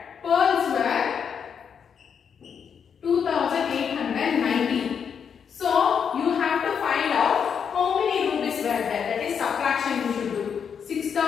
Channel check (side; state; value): right; quieter; 7.1 dB